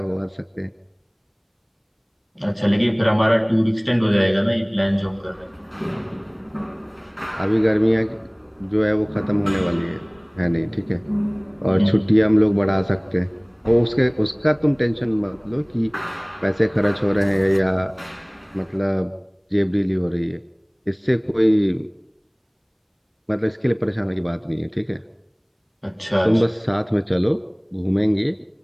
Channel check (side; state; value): both; identical; correlation 1.00